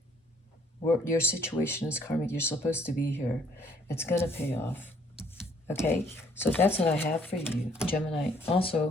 Your situation is karmic. You're supposed to be here. It's going to pay off. Okay, so that's what I have for you, Gemini.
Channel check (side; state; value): both; normal; correlation 0.63